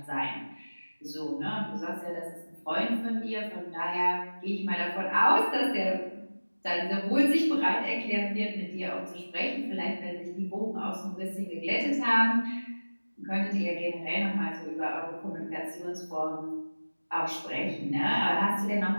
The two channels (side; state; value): both; inverted; correlation -1.00